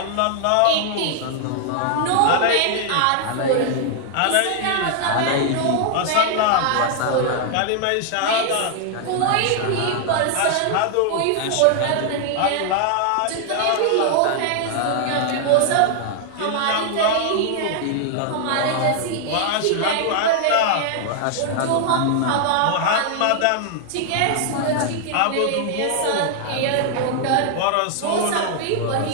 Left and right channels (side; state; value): both; different; correlation 0.00